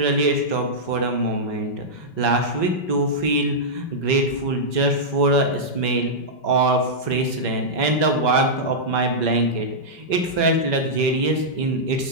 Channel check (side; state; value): right; late; 5.2 ms